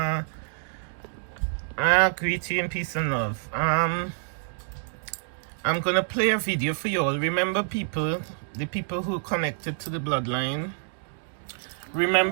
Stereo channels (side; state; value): left; silent; digital silence